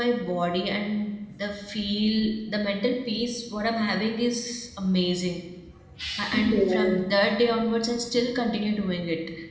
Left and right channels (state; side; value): identical; both; correlation 1.00